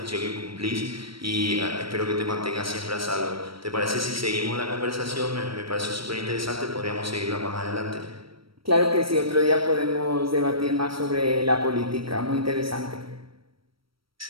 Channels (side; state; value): left; late; 0.75 ms